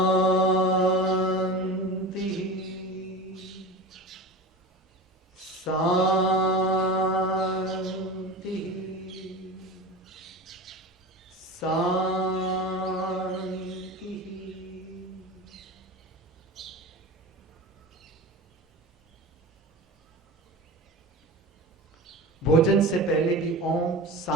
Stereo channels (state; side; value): normal; both; correlation 0.30